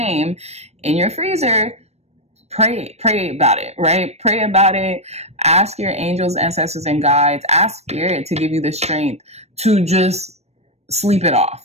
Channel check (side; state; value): left; late; 0.31 ms